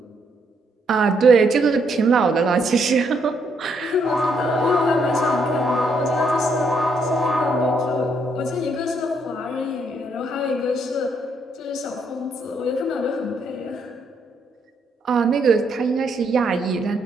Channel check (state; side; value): normal; both; correlation 0.73